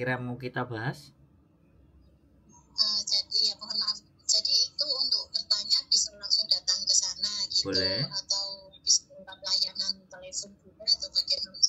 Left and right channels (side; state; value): both; identical; correlation 1.00